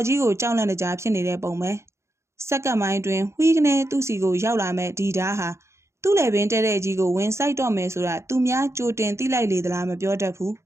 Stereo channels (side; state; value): left; late; 0.13 ms